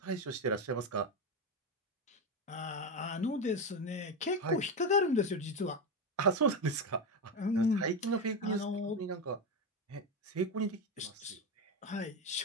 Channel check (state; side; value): normal; both; correlation 0.14